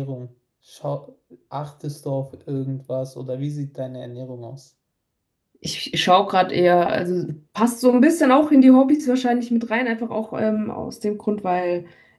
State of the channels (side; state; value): both; identical; correlation 1.00